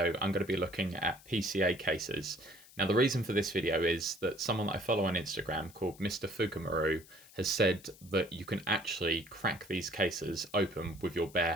I'm going to be looking at PCA cases. Now the reason for this video is that someone that I follow on Instagram called Mr. Fukumaru has said that you can actually crack these cases open with your bare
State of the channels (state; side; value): noise; left; hiss, 22 dB below the sound